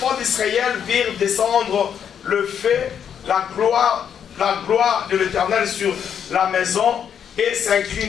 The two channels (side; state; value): right; quieter; 8.2 dB